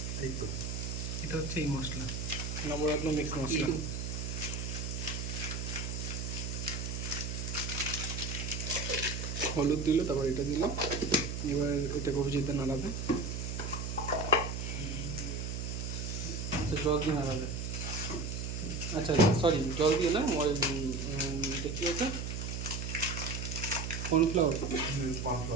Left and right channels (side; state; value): right; noise; hum, 4 dB below the sound